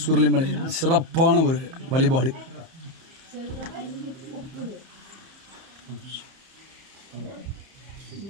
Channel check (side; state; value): left; late; 30 ms